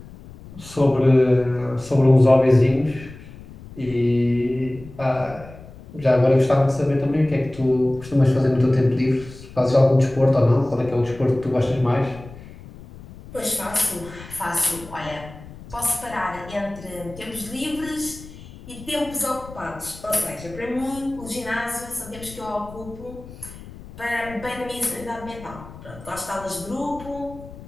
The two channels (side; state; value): left; noise; rumble, 17 dB below the sound